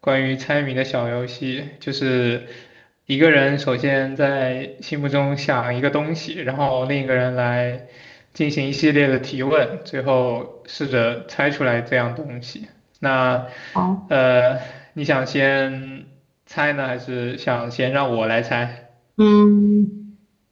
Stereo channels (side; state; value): both; identical; correlation 1.00